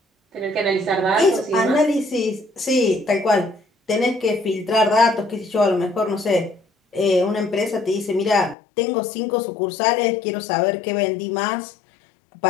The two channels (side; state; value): right; drops out; at 8.6 s